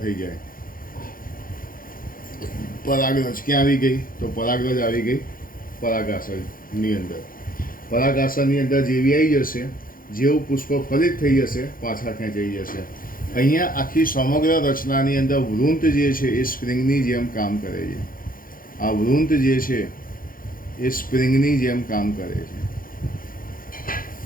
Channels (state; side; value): late; right; 0.41 ms